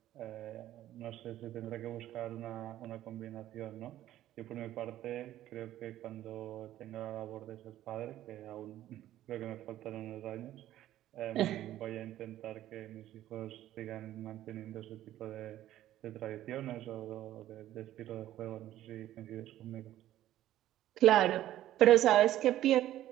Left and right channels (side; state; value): left; quieter; 13.3 dB